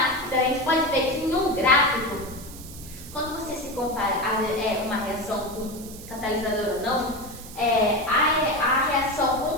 Então a gente pode ver que no gráfico, quando você se compara uma reação com catalisador ou não, a reação com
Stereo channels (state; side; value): noise; right; hiss, 15 dB below the sound